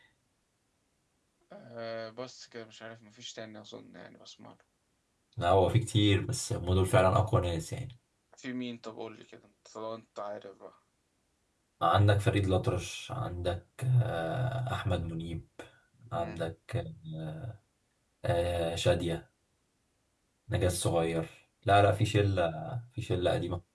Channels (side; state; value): both; identical; correlation 1.00